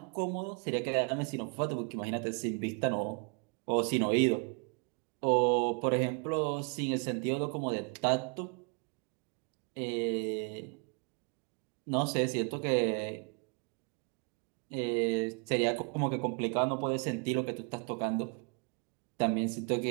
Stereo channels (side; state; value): left; quieter; 35.8 dB